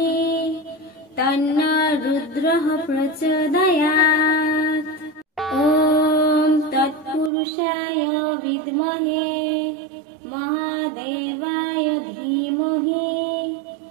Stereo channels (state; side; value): drops out; left; at 7.3 s